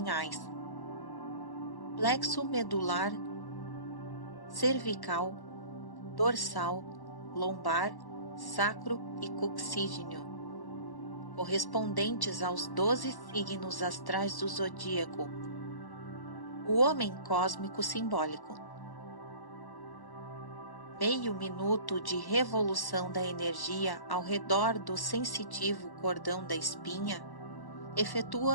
plexo medular, cervical, dorsal, lombar, sacro e coxígeno, correspondentes aos 12 signos astrais do zodíaco, o homem cósmico simbólico. Meio minuto de revolução da energia ao redor do sensitivo cordão da espinha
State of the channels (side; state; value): right; late; 1.1 ms